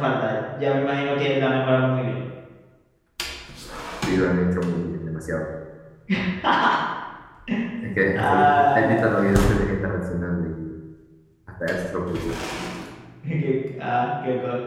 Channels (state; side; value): identical; both; correlation 1.00